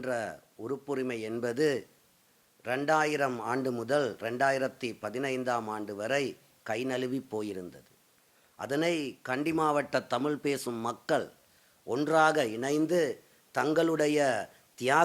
உறுப்புரிமை என்பது 2000 ஆண்டு முதல் 2015ஆம் ஆண்டு வரை கை நழுவி போயிருந்தது. அதனை கண்டி மாவட்ட தமிழ் பேசும் மக்கள் ஒன்றாக இணைந்து தங்களுடைய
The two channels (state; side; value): identical; both; correlation 1.00